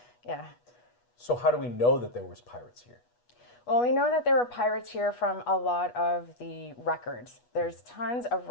Yeah. So how do we know that there was pirates here? Well, we know that there were pirates here from a lot of the records. There's tons of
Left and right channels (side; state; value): right; late; 8.2 ms